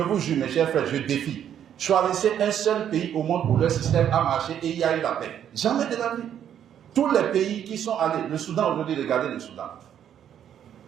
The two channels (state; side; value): quieter; left; 9.7 dB